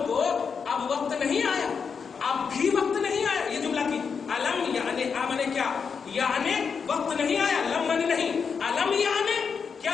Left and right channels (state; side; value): quieter; right; 6.0 dB